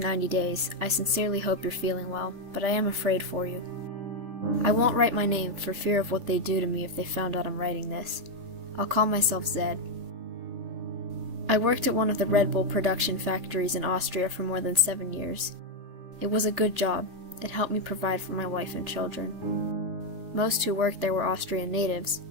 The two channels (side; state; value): left; late; 3.5 ms